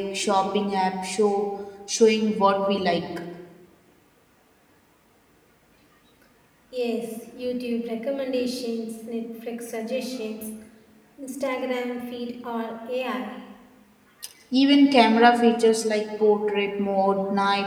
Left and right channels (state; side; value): identical; both; correlation 1.00